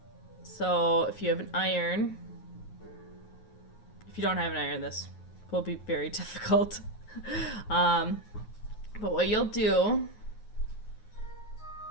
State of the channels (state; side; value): late; right; 9.4 ms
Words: So if you have an iron, if you don't have an iron, this will be very difficult. But what you'll do